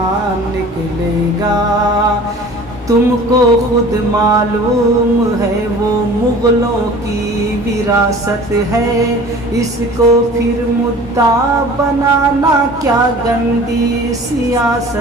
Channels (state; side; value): normal; both; correlation 0.44